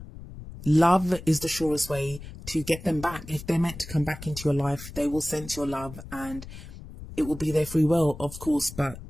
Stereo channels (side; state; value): left; noise; rumble, 14 dB below the sound